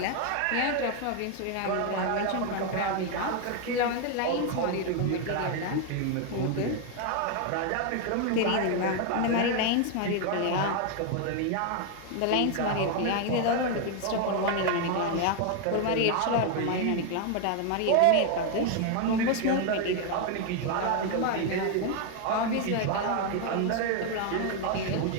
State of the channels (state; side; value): different; both; correlation 0.01